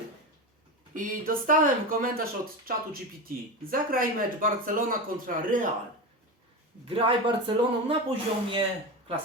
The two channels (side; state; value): both; normal; correlation 0.21